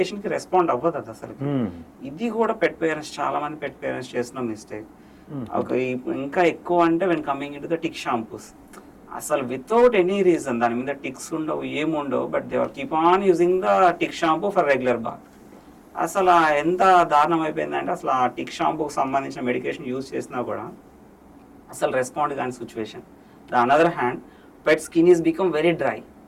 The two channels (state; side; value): identical; both; correlation 1.00